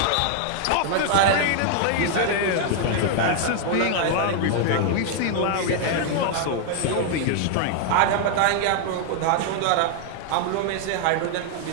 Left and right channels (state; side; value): different; both; correlation 0.00